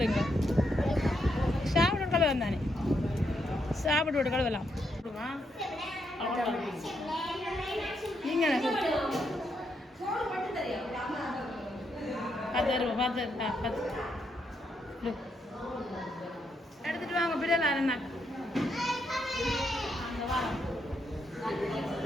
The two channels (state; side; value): normal; both; correlation 0.79